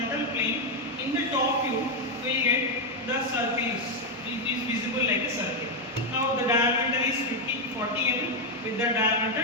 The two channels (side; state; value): both; normal; correlation 0.02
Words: plane, in the top view we get the circle is visible like a circle. Now the diameter is 40 mm. With the